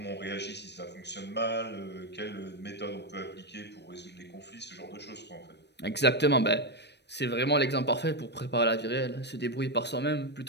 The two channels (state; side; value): late; right; 0.50 ms